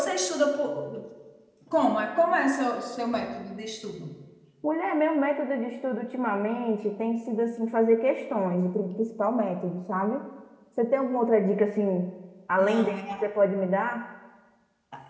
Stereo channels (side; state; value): both; identical; correlation 1.00